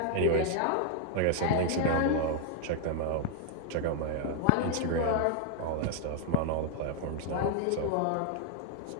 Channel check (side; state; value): both; different; correlation 0.00